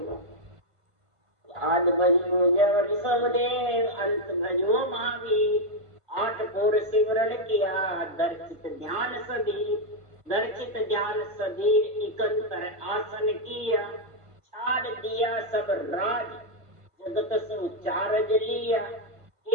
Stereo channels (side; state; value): left; late; 1.5 ms